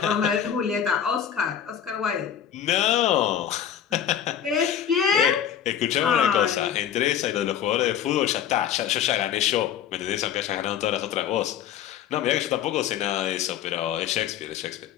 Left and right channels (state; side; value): quieter; right; 9.4 dB